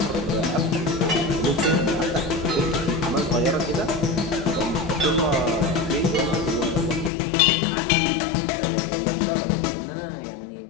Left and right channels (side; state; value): right; drops out; at 7.1 s